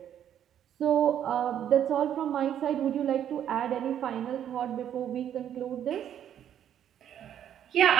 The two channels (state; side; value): quieter; left; 10.0 dB